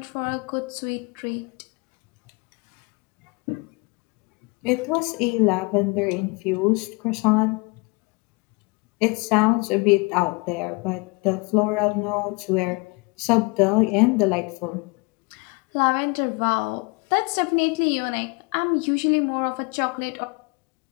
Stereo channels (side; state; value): right; quieter; 28.6 dB